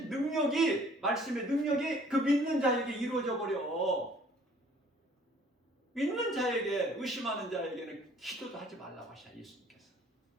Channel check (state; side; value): normal; both; correlation 0.56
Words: 능력이, 말씀의 능력이 그 믿는 자에게 이루어져 버려. 믿는 자에게, 의심하는 자에게는 기도도 하지 말라고 하셔, 예수님께서.